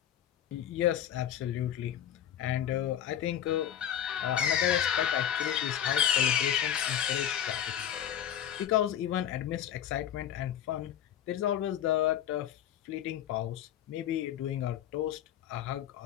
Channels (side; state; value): right; quieter; 10.3 dB